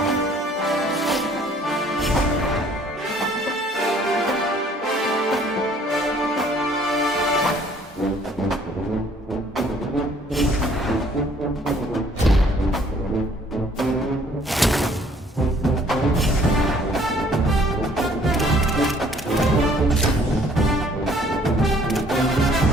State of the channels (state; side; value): normal; both; correlation 0.59